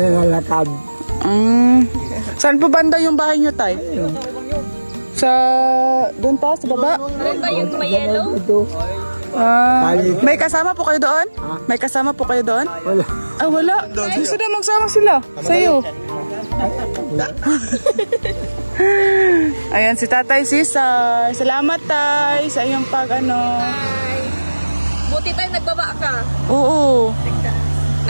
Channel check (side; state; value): both; inverted; correlation -1.00